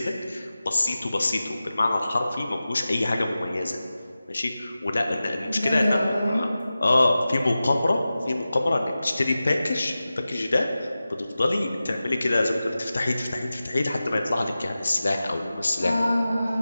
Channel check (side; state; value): both; inverted; correlation -0.95